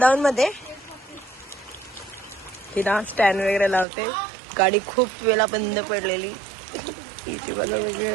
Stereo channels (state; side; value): drops out; left; at 3.9 s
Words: मध्ये. तिला स्टँड वगैरे लावते. गाडी खूप वेळा बंद पडलेली. इथे बघा